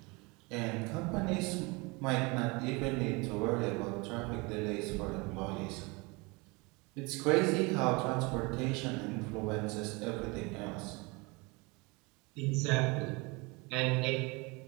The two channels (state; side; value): quieter; left; 27.0 dB